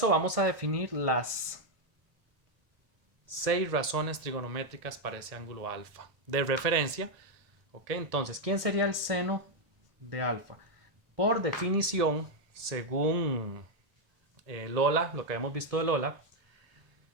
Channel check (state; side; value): late; left; 1.7 ms